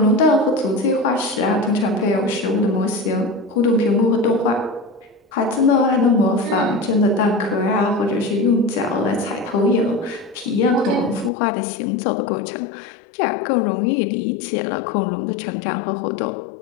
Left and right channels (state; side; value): drops out; right; at 11.3 s